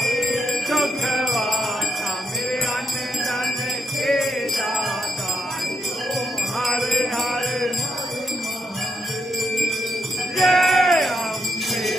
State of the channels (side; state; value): both; normal; correlation 0.80